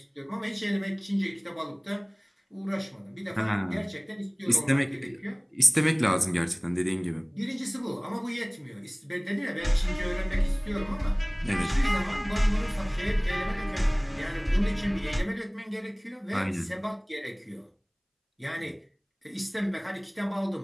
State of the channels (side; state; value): both; identical; correlation 1.00